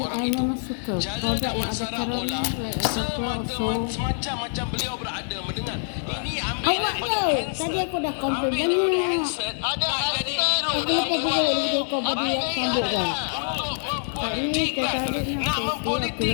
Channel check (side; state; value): right; silent; digital silence